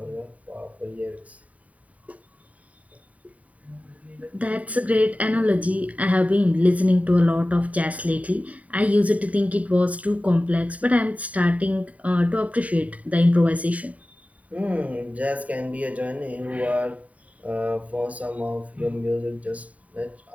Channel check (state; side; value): late; left; 0.069 ms